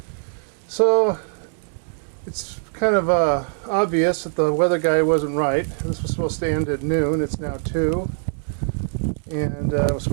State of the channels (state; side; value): silent; left; digital silence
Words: So it's kind of obvious that the weather guy wasn't right. This was supposed to end at noon. It's now 2. And it was